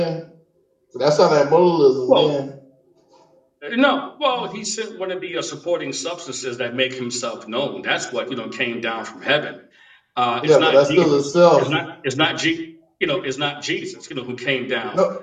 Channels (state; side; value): identical; both; correlation 1.00